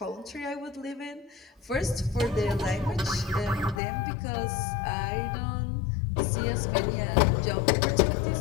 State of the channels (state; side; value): drops out; right; at 3.8 s